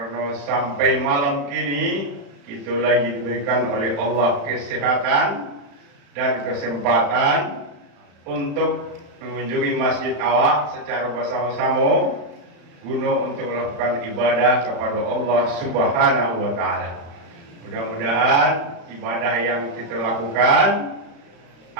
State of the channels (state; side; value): late; left; 35 ms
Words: sampai malam kini kita lagi diberikan oleh Allah kesehatan dan kesempatan untuk mengunjungi masjid awak secara bersama-sama guna untuk melakukan ibadah kepada Allah Subhanahu wa taala. Mudah-mudahan ibadah yang kita lakukan